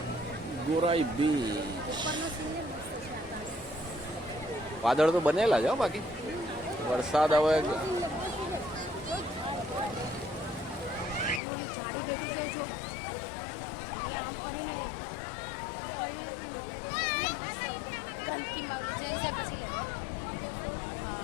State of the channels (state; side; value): drops out; right; at 11.4 s